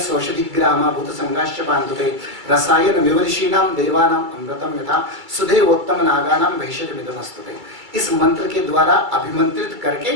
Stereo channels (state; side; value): late; left; 2.3 ms